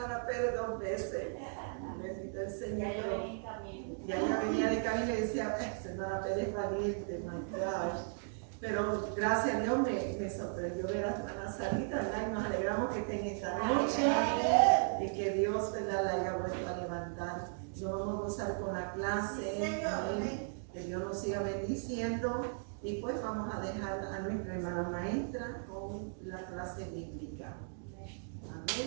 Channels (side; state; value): left; silent; digital silence